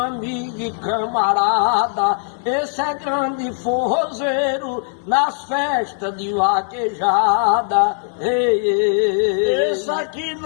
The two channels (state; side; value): silent; right; digital silence